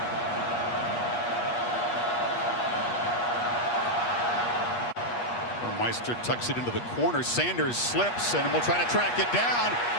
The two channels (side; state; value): right; late; 8.3 ms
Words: Meister tucks it into the corner. Sanders slips and will try to track it down.